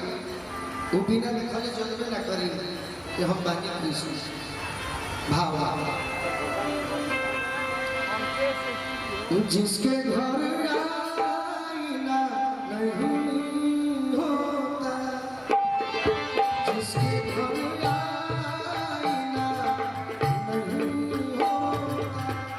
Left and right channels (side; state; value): both; identical; correlation 1.00